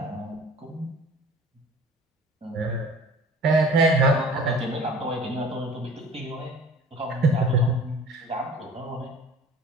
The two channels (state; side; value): normal; both; correlation 0.45